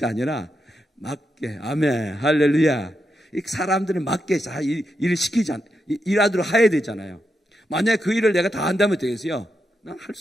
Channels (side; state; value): both; normal; correlation 0.85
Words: 아니라 맞게, 아멘, 할렐루야. 사람들이 맞게 일을 일하도록 해야 되잖아요. 만약에 그 일을 내가 다 한다면 되겠어요? 난 할